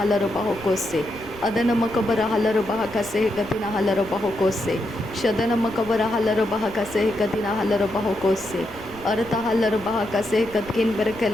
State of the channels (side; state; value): left; noise; rumble, 19 dB below the sound